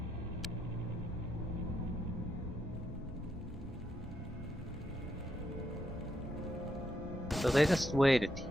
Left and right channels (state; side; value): normal; both; correlation 0.80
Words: So they just waited